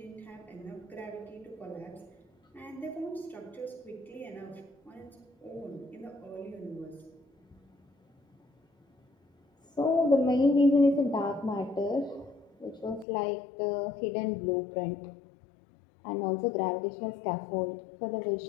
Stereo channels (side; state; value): right; drops out; at 13.1 s